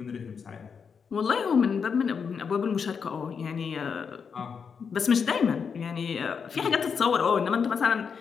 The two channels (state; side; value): quieter; right; 6.2 dB